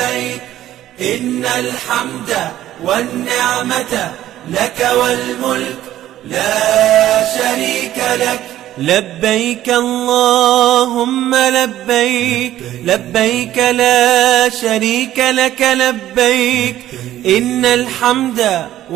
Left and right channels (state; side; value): quieter; left; 13.2 dB